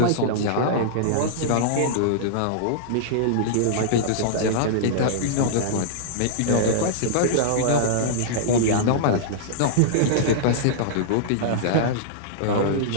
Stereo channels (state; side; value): different; both; correlation -0.02